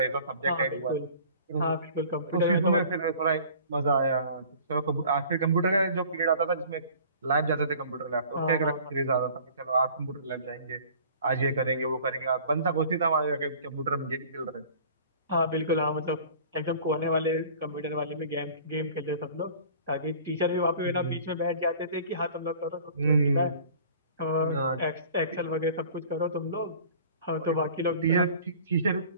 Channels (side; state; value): both; inverted; correlation -0.48